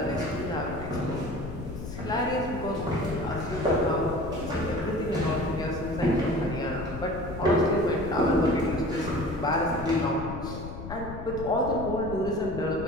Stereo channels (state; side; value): noise; left; rumble, 9 dB below the sound